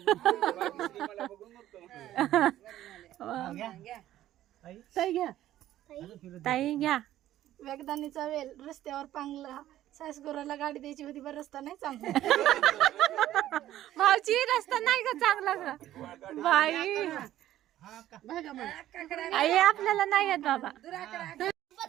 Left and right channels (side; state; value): left; quieter; 13.3 dB